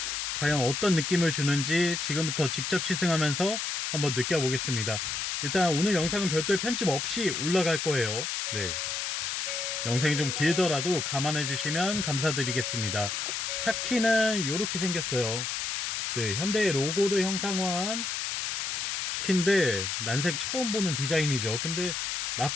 과연 어떤 느낌을 주는지 지금부터 직접 시승하면서 한번 느껴보겠습니다. 일단 오늘 영상은 별도의 편집 없이 올라갈 거예요. 네, 영상이 좀 길더라도 감안해 주시면 감사드리겠습니다. 차 키는 이렇게 생겼어요. 네, 현대의 로고를 형상화한 키인데 난생 처음 보는 디자인이죠. 근데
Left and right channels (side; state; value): left; noise; hiss, 2 dB below the sound